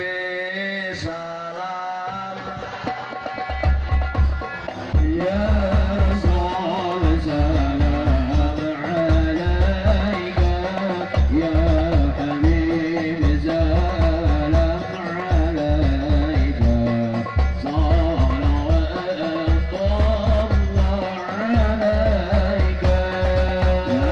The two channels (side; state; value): both; identical; correlation 1.00